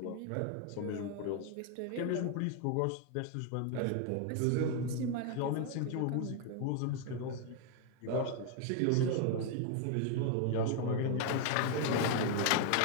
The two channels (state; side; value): different; both; correlation 0.01